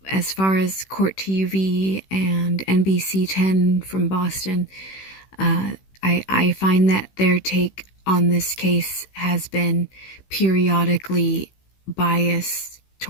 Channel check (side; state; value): right; late; 16 ms